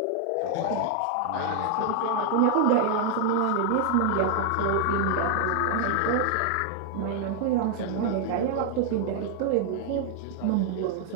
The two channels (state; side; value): different; both; correlation 0.00